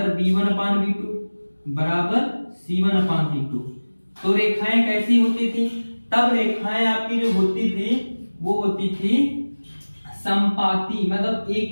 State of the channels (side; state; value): both; inverted; correlation -1.00